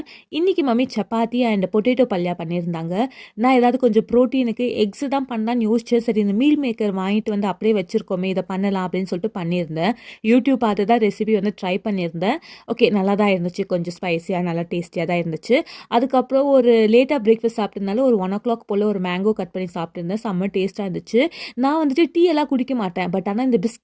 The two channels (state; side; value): identical; both; correlation 1.00